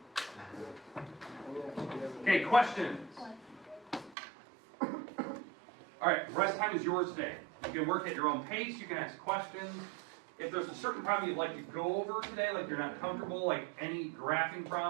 Okay, questions? All right, rest time is yours today. You can work at your own pace, you can ask questions. If there's a certain problem you'd like to go over today, like you're not comfortable, like any graphing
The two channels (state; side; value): drops out; left; at 4.2 s